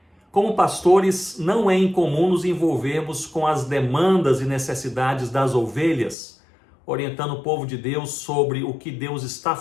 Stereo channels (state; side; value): drops out; right; at 6.2 s